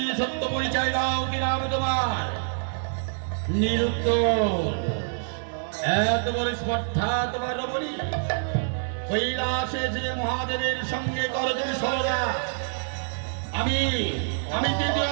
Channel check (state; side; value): silent; left; digital silence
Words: পরিচয় দাও, কি নাম তোমার? নিরুত্তর। এত বড় স্পর্ধা তোমার রমণী? কৈলাসে যে মহাদেবের সঙ্গে করো তুমি সরলা। আমি